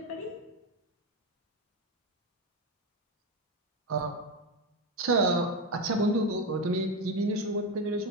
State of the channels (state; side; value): normal; both; correlation 0.13